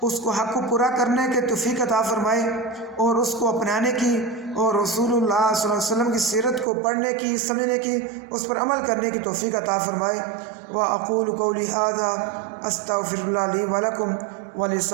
اس کو حق کو پورا کرنے کے توفیق عطا فرمائے، اور اس کو اپنانے کی اور رسول اللہ صلی اللہ علیہ وسلم کی سیرت کو پڑھنے کی، سمجھنے کی، اس پر عمل کرنے کی توفیق عطا فرمائے۔ وَأَقُولُ قَوْلِي هَذَا أَسْتَغْفِرُ اللَّهَ لِي وَلَكُمْ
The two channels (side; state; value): left; drops out; at 6.7 s